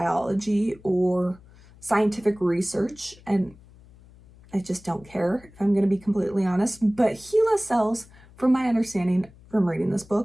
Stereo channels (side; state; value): left; noise; hum, 24 dB below the sound